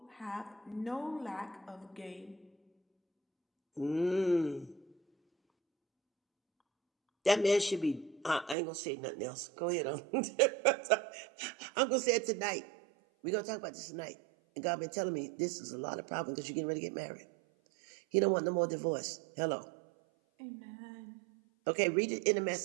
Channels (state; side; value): drops out; left; at 8.6 s